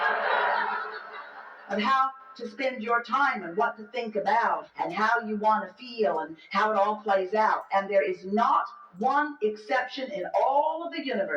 of how to spend your time and what to think about and how you want to feel and how it all plays out. And there is not one exception in all of the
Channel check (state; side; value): identical; both; correlation 1.00